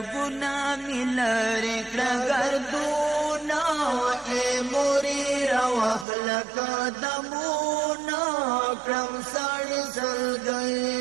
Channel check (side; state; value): left; drops out; at 6.1 s